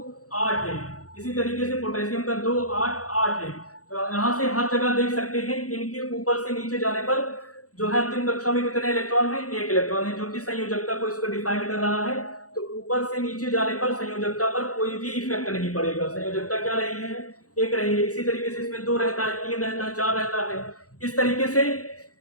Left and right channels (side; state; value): right; late; 0.66 ms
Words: 8 है, इसी तरीके से पोटेशियम का 2, 8, 8 है। तो यहाँ से हर जगह देख सकते हैं इनके ऊपर से नीचे जाने पर जो है अंतिम कक्षा में कितने इलेक्ट्रॉन है, एक इलेक्ट्रॉन है, जो कि संयोजकता को इसको डिफाइन कर रहा है। तो ऊपर से नीचे जाने पर संयोजकता पर कोई भी इफेक्ट नहीं पड़ेगा, संयोजकता क्या रही है, एक रही है। इसी तरीके से इसमें 2 रहता है, 3 रहता है, 4 रहता है। इस तरीके से